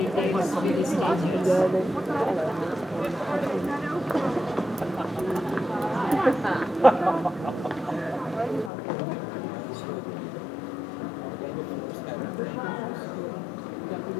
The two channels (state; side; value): drops out; right; at 8.7 s